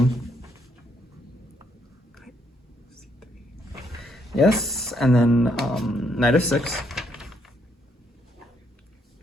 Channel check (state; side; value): normal; both; correlation 0.73